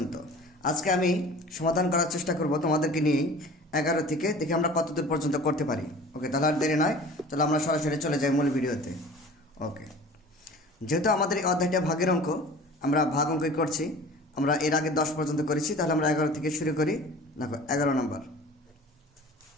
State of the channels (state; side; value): normal; both; correlation 0.42